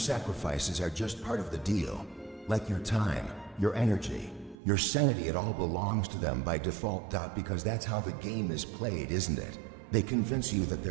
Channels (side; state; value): left; drops out; at 4.5 s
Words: are just part of the deal. Like your time, your energy, your sanity, it all belongs to them by default. Because that's how the game is played, isn't it? They convince you that